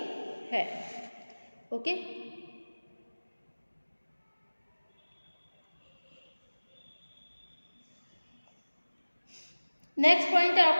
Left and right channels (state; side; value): inverted; both; correlation -1.00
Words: है। ओके, नेक्स्ट पॉइंट है